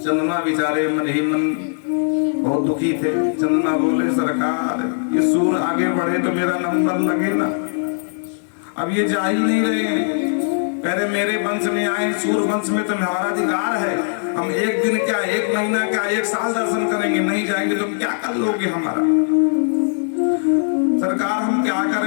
बेचारे मन ही मन बहुत दुखी थे। चंद्रमा बोले सरकार ये सूर्य आगे बढ़े तो मेरा नंबर लगे ना, अब ये जा ही नहीं रहे हैं। कह रहे मेरे वंश में आए, सूर्य वंश में तो हमारा अधिकार है, हम 1 दिन क्या 1 महीना क्या 1 साल दर्शन करेंगे, नहीं जाएंगे तो क्या कर लोगे हमारा? सरकार हम क्या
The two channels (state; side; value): silent; right; 66 dB below the other